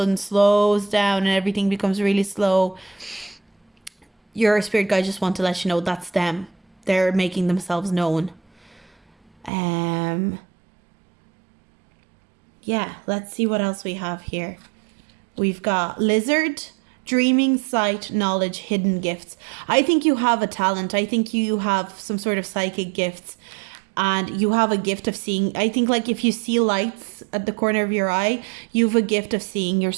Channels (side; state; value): left; drops out; at 9.5 s